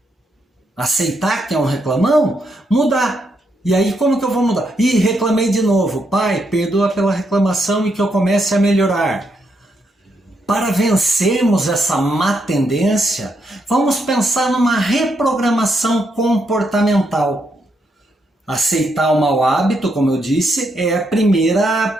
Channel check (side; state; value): both; normal; correlation 0.79